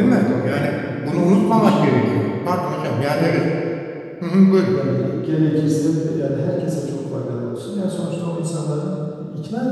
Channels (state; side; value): identical; both; correlation 1.00